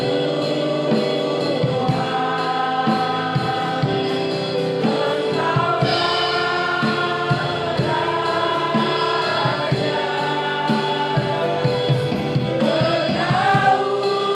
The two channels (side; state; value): both; identical; correlation 1.00